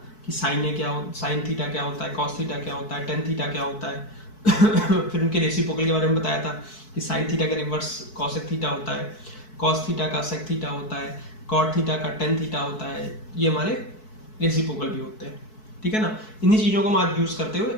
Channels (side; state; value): right; late; 4.6 ms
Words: कि साइन थीटा क्या होता है, कॉस थीटा क्या होता है, टेन थीटा क्या होता है फिर उनके रेसिप्रोकल के बारे में बताया था कि साइन थीटा का रिवर्स कॉसेक थीटा होता है, कॉस थीटा का सेक थीटा होता है, कॉट थीटा का टेन थीटा होता है, ये हमारे रेसिप्रोकल भी होते हैं। ठीक है ना, इन्हीं चीज़ों को हम आज यूज़ करते हुए